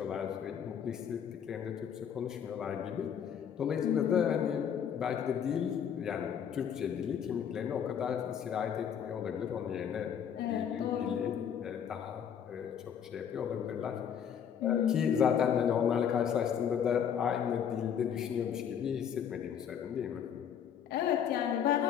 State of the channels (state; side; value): quieter; right; 8.3 dB